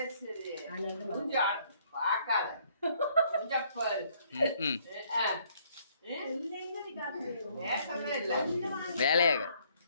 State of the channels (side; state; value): both; inverted; correlation -0.65